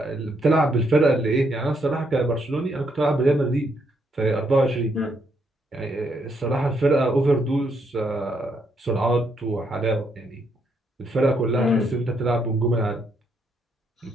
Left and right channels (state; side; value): normal; both; correlation 0.75